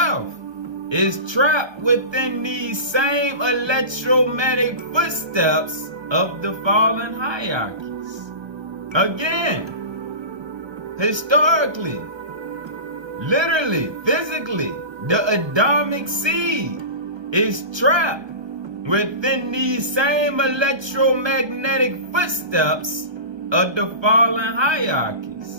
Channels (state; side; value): late; left; 1.3 ms